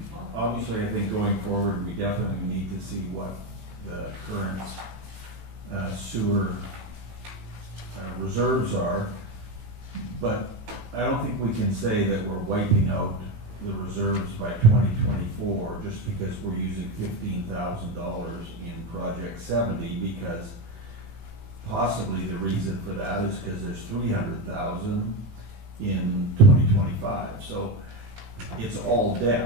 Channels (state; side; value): late; left; 18 ms